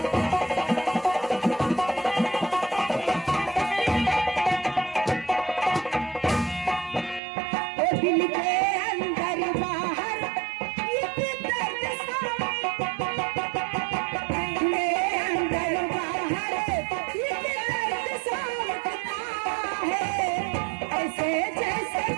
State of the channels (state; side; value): drops out; left; at 7.2 s